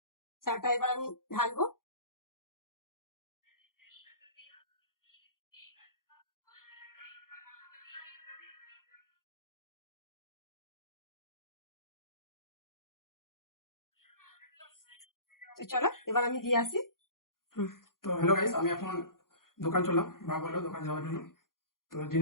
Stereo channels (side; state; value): right; late; 0.91 ms